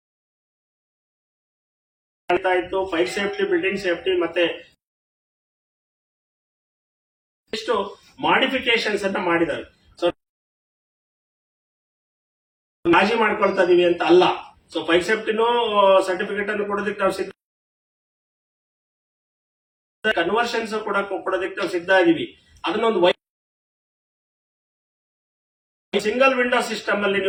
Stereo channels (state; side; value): identical; both; correlation 1.00